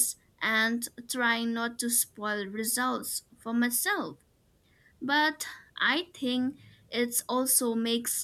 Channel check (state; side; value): identical; both; correlation 1.00